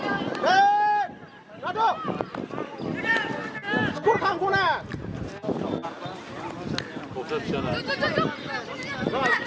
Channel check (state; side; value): identical; both; correlation 1.00